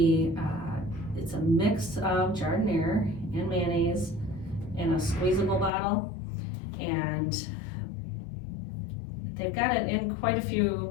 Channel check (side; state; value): right; drops out; at 5.7 s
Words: It's a mix of giardiniera and mayonnaise in a squeezable bottle, and they've got it in quite a few